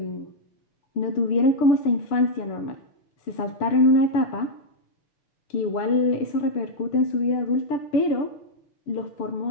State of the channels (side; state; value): right; late; 6.8 ms